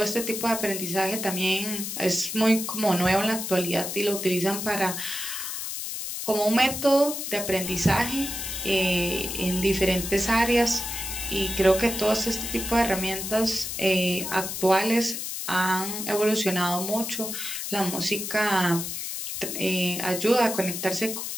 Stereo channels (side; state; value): left; noise; hiss, 5 dB below the sound